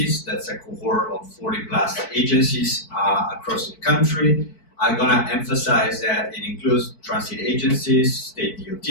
That's a cohort of 40 plus agencies across the country. I'm gonna emphasize that it includes transit agencies, state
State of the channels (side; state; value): right; late; 4.6 ms